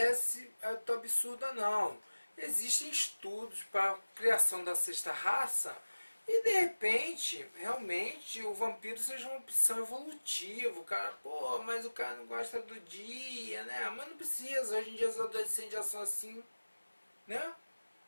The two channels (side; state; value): both; inverted; correlation -1.00